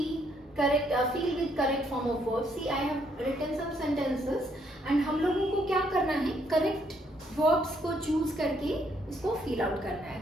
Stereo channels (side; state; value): both; normal; correlation 0.71